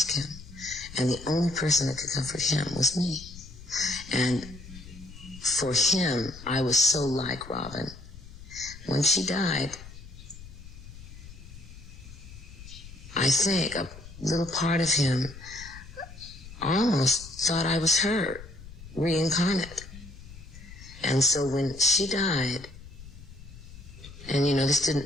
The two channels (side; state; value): left; noise; rumble, 16 dB below the sound